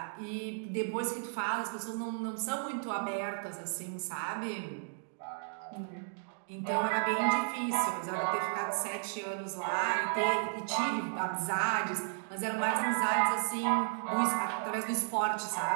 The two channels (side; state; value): left; silent; digital silence